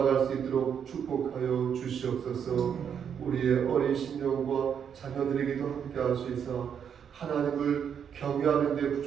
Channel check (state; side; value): quieter; left; 7.9 dB